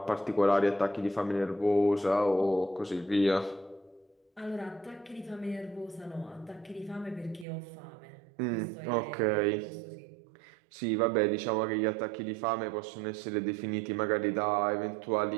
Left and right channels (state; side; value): drops out; left; at 7.5 s